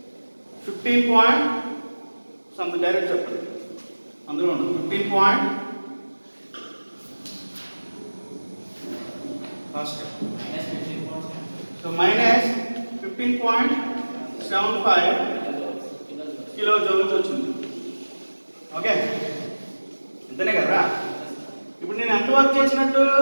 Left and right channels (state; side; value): inverted; both; correlation -1.00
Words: 15 సంథింగ్, డైరెక్ట్ చెప్పండి, అందులో ఉంటుంది 15 సో మైనస్ 15.75 కిలో జౌల్స్ వచ్చింది. ఓకే, అంతేనే కదా. ఇప్పుడు నేను ఎంత వర్క్ చేసినట్టు,